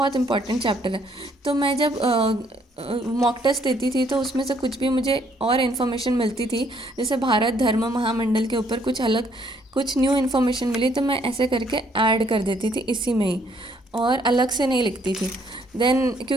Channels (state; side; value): normal; both; correlation 0.67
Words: इंपॉर्टेंट चैप्टर है। तो मैं जब मॉक टेस्ट देती थी तो उसमें से कुछ भी मुझे और इन्फॉर्मेशन मिलती थी, जैसे भारत धर्म महामंडल के ऊपर कुछ अलग कुछ न्यू इन्फॉर्मेशन मिली, तो मैं ऐसे करके ऐड कर देती थी इसी में ही, और अलग से नहीं लिखती थी। देन